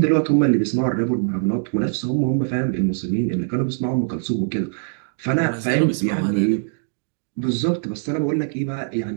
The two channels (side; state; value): left; silent; digital silence